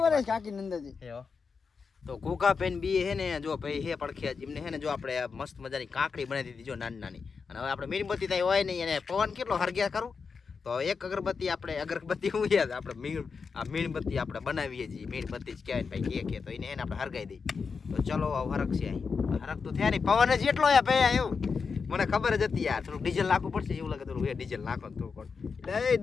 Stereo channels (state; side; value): quieter; right; 5.3 dB